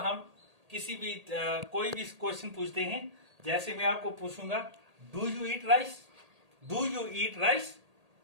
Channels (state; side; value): late; left; 1.8 ms